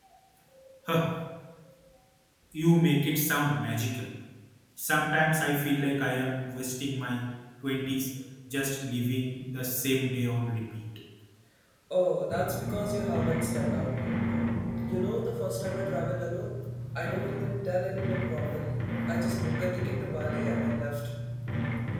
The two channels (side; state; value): both; identical; correlation 1.00